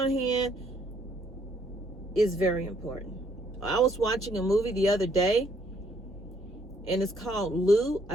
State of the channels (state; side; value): normal; both; correlation 0.67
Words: hand is very important. I was watching a movie the other day, and it's called Lou.